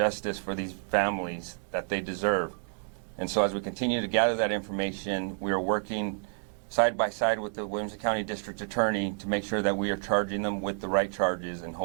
for these families that they deserve. And so as we continue to gather that information, we are working side by side with the Williamson County District Attorney to make sure that we are charging them with the right charges and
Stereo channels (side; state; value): left; silent; 58 dB below the other